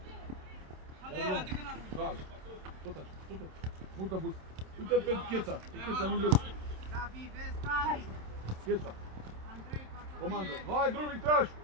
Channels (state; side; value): late; left; 27 ms